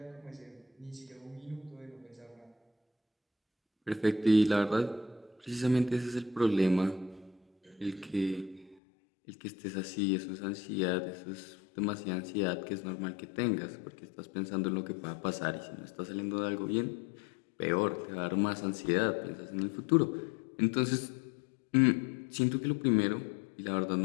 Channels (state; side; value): drops out; right; at 8.8 s